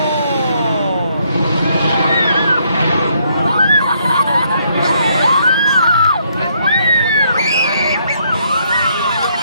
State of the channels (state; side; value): inverted; both; correlation -0.71